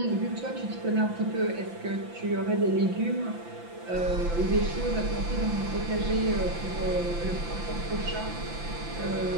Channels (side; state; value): left; late; 5.9 ms